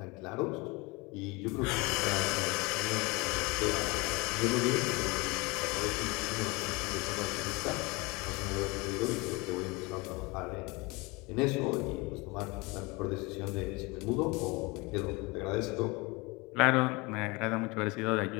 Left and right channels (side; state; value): right; quieter; 25.6 dB